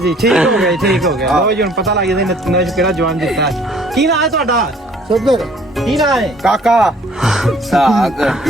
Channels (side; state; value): both; normal; correlation 0.57